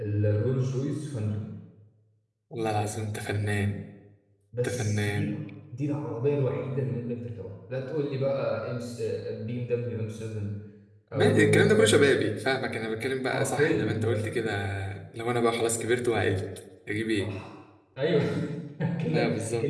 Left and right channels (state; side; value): identical; both; correlation 1.00